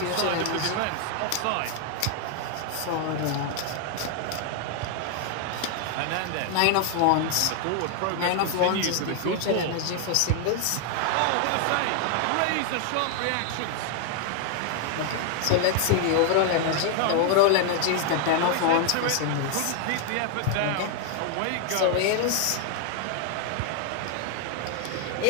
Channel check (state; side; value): different; both; correlation 0.00